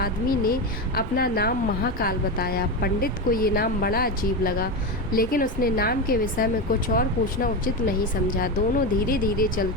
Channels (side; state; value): both; normal; correlation 0.16